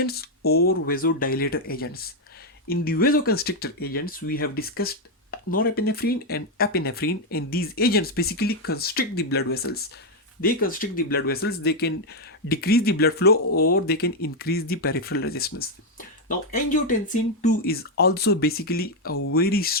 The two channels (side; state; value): both; normal; correlation 0.02